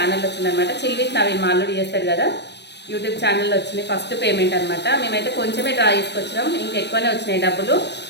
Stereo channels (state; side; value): late; right; 0.50 ms